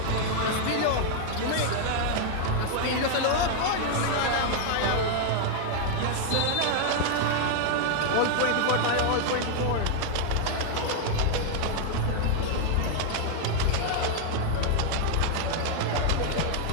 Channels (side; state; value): both; different; correlation 0.00